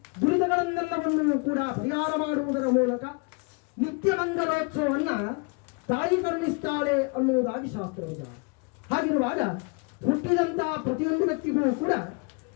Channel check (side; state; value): right; quieter; 33.4 dB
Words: ದುರಿತಗಳನ್ನೆಲ್ಲವನ್ನು ಕೂಡ ಪರಿಹಾರ ಮಾಡುವುದರ ಮೂಲಕ ನಿತ್ಯ ಮಂಗಲೋತ್ಸವವನ್ನು ತಾಯಿ ಕರುಣಿಸ್ತಾಳೆ ಅನ್ನುವುದಾಗಿ ಶಾಸ್ತ್ರ ವಿಧಾನ. ಹಾಗಿರುವಾಗ ಹುಟ್ಟಿದಂತಹ ಪ್ರತಿಯೊಂದು ವ್ಯಕ್ತಿಗೂ ಕೂಡ